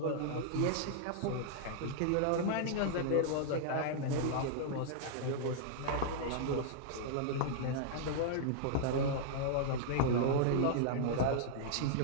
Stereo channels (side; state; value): both; different; correlation -0.01